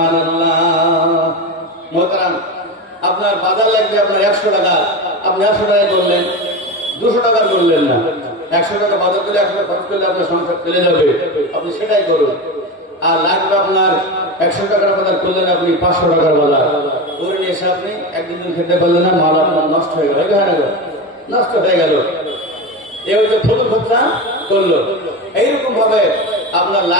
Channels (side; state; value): both; normal; correlation 0.22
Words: মোহতারাম, আপনার বাজার লাগবে আপনার 100 টাকা, আপনি 100 টাকায় করলেন, 200 টাকা করলেন না। 100 টাকা বাজার করলে 100 টাকা খরচ করলে আপনার সংসার চলে যাবে, আপনি সেটাই করুন। আর লাগবে আপনার 100 টাকার বাজার করলেন, আপনি 500 টাকার বাজার করে নিয়ে এসে আপনি একদিন খেতে পারলেন না, মাল আপনার নষ্ট হয়ে গেল, নষ্ট হয়ে গেল। এই হচ্ছে ফটো খরচা করলো। এইরকম ভাবে আপনার